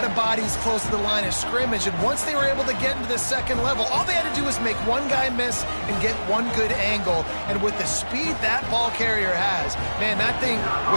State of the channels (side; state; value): both; inverted; correlation -1.00